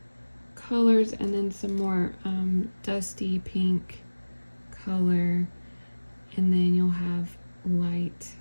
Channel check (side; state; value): both; inverted; correlation -1.00